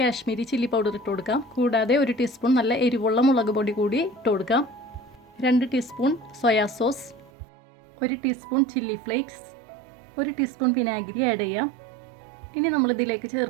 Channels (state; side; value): drops out; left; at 7.3 s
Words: ചില്ലി പൗഡർ ഇട്ട് കൊടുക്കാം. കൂടാതെ 1 ടീസ്പൂൺ നല്ല എരിവുള്ള മുളക് പൊടി കൂടി ഇട്ട് കൊടുക്കാം. 2 teaspoon soya sauce, 1 teaspoon chilli flakes, 1 teaspoon വിനാഗിരി ആഡ് ചെയ്യാം. ഇനി നമ്മളിതിലേക്ക്